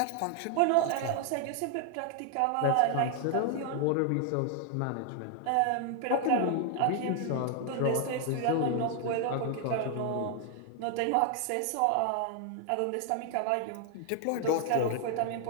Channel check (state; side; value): different; both; correlation 0.00